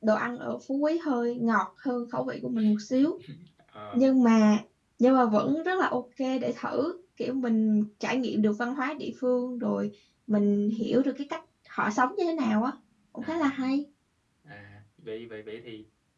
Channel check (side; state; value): both; identical; correlation 1.00